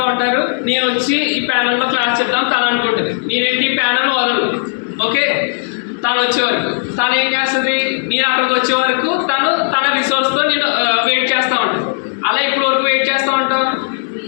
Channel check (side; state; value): right; silent; digital silence